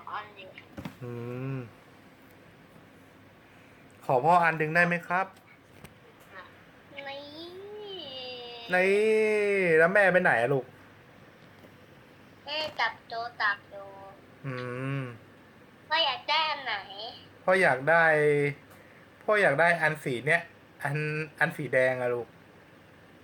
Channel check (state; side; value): identical; both; correlation 1.00